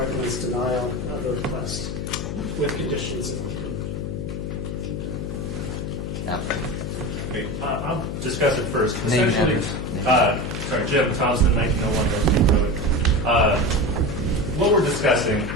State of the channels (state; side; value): noise; left; hum, 4 dB below the sound